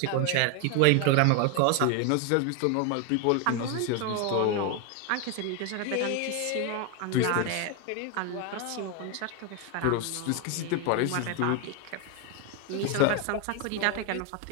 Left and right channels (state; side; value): different; both; correlation 0.01